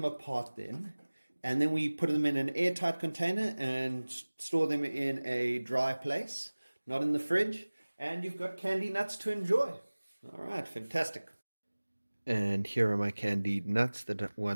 apart then. And then we put them in an airtight container and store them in a dry place, not in the fridge. And you've got candy nuts to enjoy. All right, fantastic. And here are my candied nuts that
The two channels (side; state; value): both; inverted; correlation -1.00